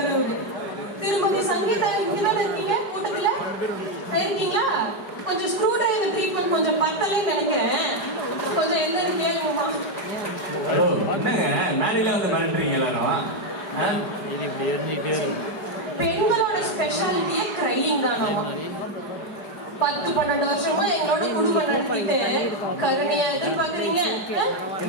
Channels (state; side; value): late; right; 5.0 ms